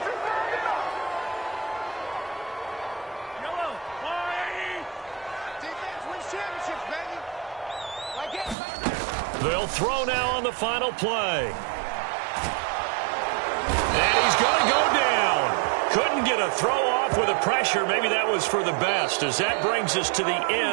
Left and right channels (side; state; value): left; drops out; at 8.6 s